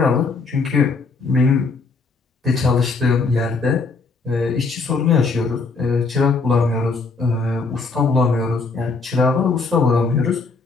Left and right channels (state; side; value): quieter; right; 4.1 dB